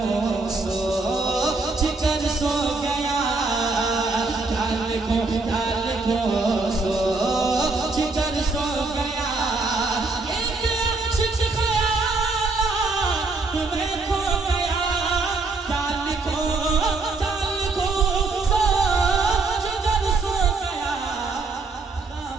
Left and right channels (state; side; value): quieter; left; 3.7 dB